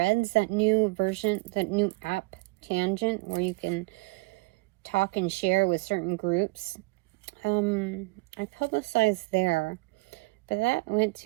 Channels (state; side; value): quieter; left; 25.6 dB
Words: that new version, that new app Tangent where you can talk and share with certain groups. I publicized there, but that went